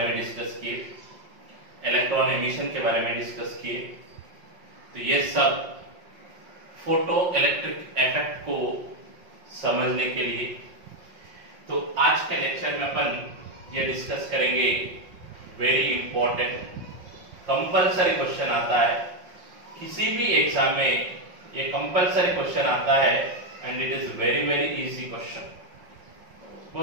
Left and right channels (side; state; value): left; late; 5.5 ms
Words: में डिस्कस किए, इलेक्ट्रॉन एमिशन के बारे में डिस्कस किए. तो ये सब फोटो इलेक्ट्रिक इफेक्ट को समझने के लिए. तो आज के लेक्चर में अपन ये डिस्कस करेंगे वेरी इंपॉर्टेंट कंपलसरी क्वेश्चन आता है किसी भी एग्जाम में. ये कंपलसरी क्वेश्चन आता है and it is very very easy question.